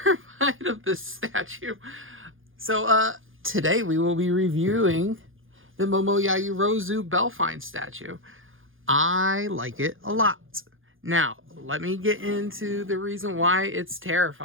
of this statue. So, today we will be reviewing the Momo Yaoyorozu Bellfine statue. I like it a lot. Now, let me get into the reason why it's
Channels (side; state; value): left; late; 0.59 ms